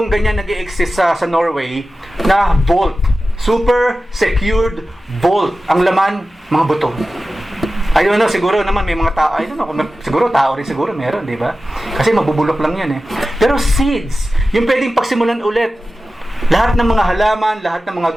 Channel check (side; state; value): both; normal; correlation 0.95